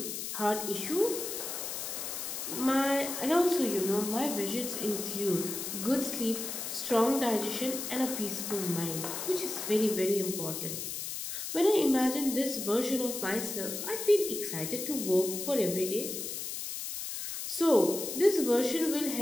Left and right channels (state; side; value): noise; left; hiss, 5 dB below the sound